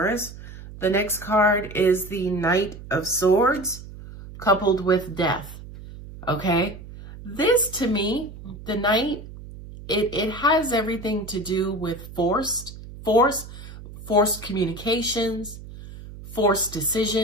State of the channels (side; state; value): right; noise; hum, 14 dB below the sound